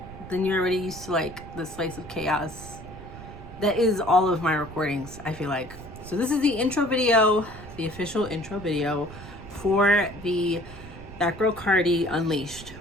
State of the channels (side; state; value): right; noise; rumble, 15 dB below the sound